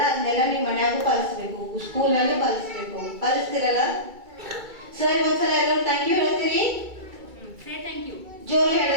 ಅದನ್ನೆಲ್ಲ ನೀವು ಮನ್ಯಾಗೂ ಪಾಲಿಸ್ಬೇಕು, ಸ್ಕೂಲ್ನಲ್ಲೂ ಪಾಲಿಸ್ಬೇಕು. ಪಾಲಿಸ್ತಿರಲ್ಲ? ಸರ್ ಒಂದ್ಸಲ ಎಲ್ಲರೂ ಥ್ಯಾಂಕ್ ಯು ಹೇಳ್ತೀರಿ? ಜೋರು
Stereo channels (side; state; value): left; late; 2.3 ms